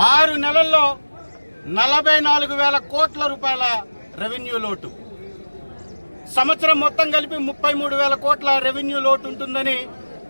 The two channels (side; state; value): both; inverted; correlation -1.00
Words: 6 నెలల్లో 44,000 కోట్ల రూపాయల రెవెన్యూ లోటు, సంవత్సరం మొత్తం కలిపి 33,000 కోట్ల రెవెన్యూ లోటు ఉంటుందని